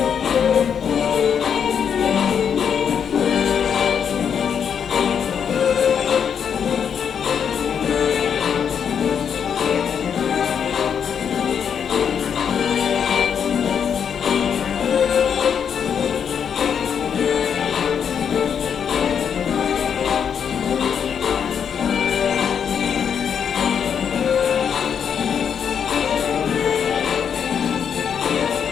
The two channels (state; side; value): quieter; right; 7.6 dB